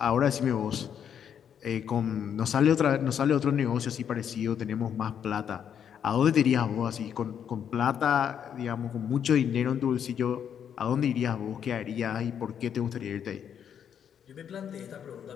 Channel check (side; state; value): right; quieter; 8.5 dB